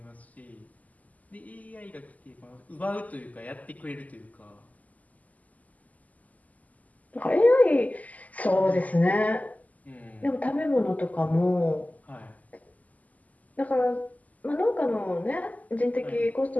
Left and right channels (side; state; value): right; late; 0.077 ms